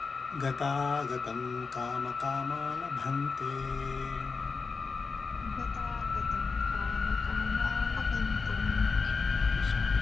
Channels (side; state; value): right; quieter; 4.7 dB